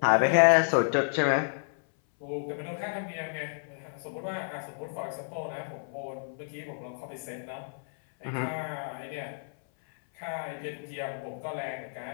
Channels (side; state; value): right; silent; 57 dB below the other